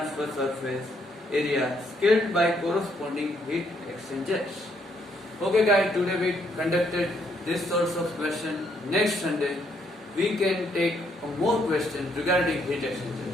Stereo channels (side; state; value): both; normal; correlation 0.72